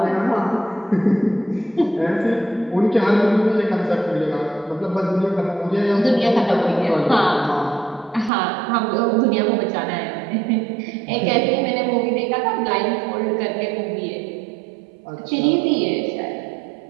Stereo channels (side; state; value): left; drops out; at 8.3 s